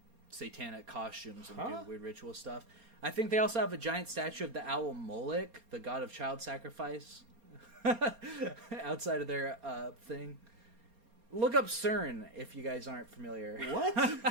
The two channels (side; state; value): left; late; 4.3 ms